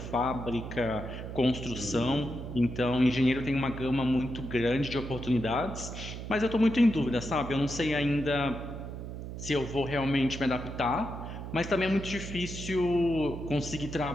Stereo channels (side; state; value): right; noise; hum, 8 dB below the sound